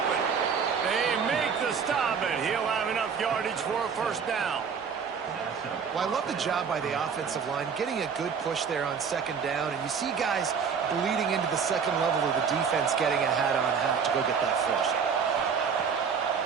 They make the stop, and he'll have enough yardage for a first down. Well, I love the job by the offensive line, getting a good push there on second down, and you see guys bleeding into the second level of the defense getting a hat-on-hat to go get that first.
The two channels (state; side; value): quieter; left; 6.3 dB